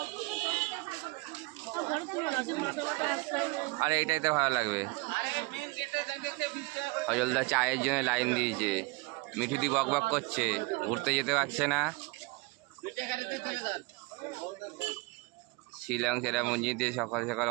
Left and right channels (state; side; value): quieter; left; 25.5 dB